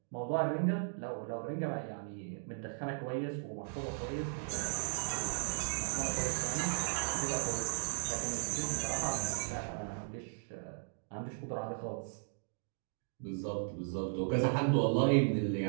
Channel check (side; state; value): left; silent; digital silence